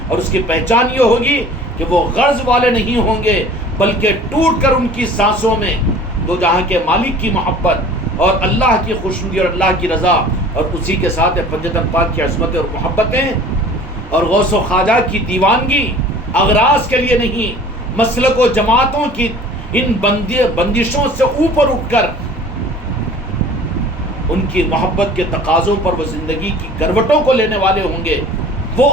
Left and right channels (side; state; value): both; normal; correlation 0.46